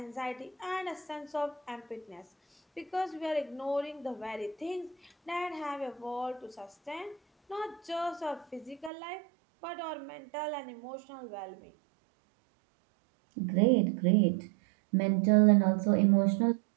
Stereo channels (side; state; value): left; drops out; at 8.9 s